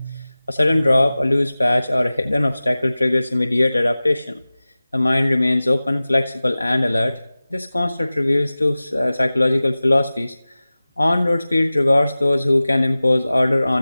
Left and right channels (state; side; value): inverted; both; correlation -0.97